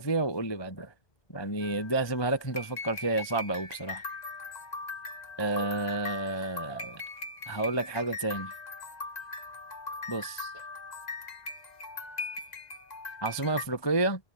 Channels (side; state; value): right; late; 1.3 ms